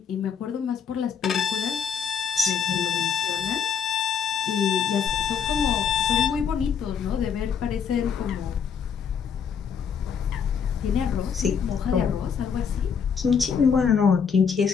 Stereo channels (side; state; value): right; quieter; 6.9 dB